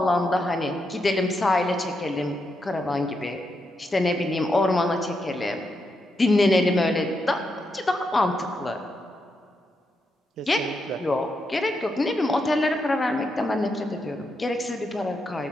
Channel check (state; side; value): normal; both; correlation 0.83